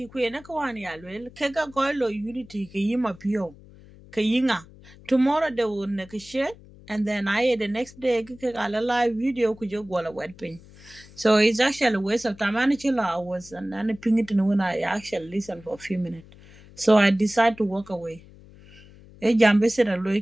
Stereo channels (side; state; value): left; noise; hum, 22 dB below the sound